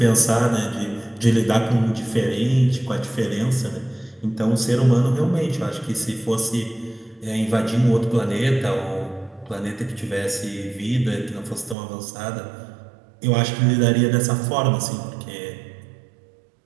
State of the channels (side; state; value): left; drops out; at 11.8 s